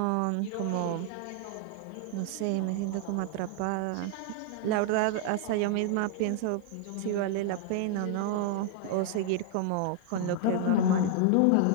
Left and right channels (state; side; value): different; both; correlation 0.00